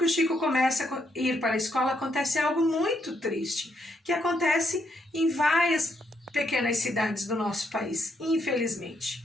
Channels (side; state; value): both; normal; correlation 0.76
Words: o Chico começa a ir para a escola, acontece algo muito triste, que acontece em várias pequenas cidades do nosso país. Infelizmente,